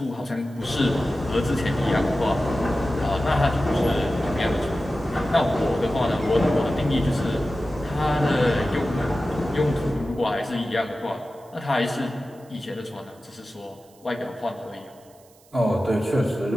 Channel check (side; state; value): right; noise; hiss, 29 dB below the sound